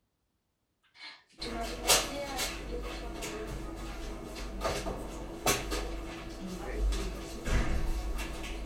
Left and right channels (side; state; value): both; identical; correlation 1.00